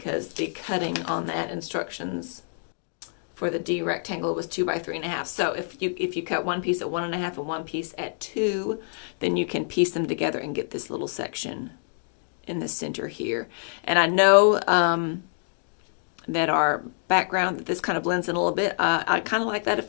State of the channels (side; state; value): right; silent; digital silence